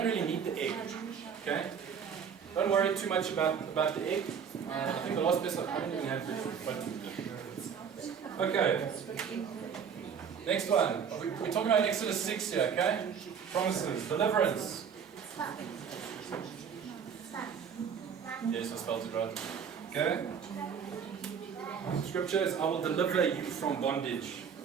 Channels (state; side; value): quieter; left; 7.2 dB